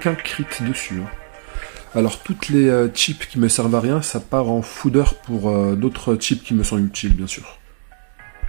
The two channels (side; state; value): left; silent; digital silence